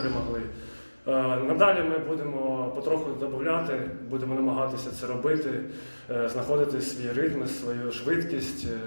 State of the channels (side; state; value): both; inverted; correlation -1.00